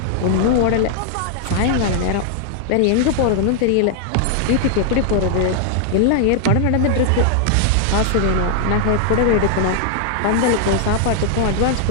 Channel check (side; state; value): both; different; correlation 0.00